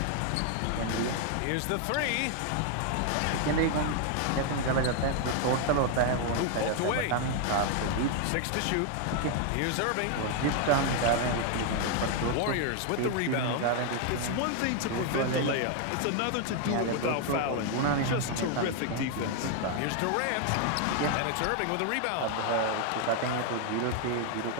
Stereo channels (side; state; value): both; different; correlation 0.00